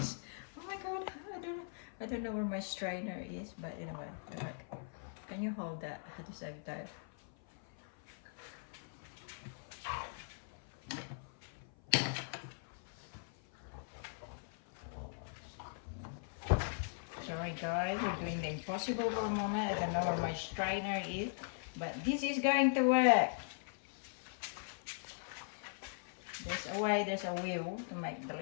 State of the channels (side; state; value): right; silent; 51 dB below the other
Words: oh my god, I don't know where my strainer is, but anyway, look. Can you hold that at the same time? Sorry guys, we're doing the impossible for a moment. I don't know where my strainer is, but this is going to work. There's a way, there's a will to make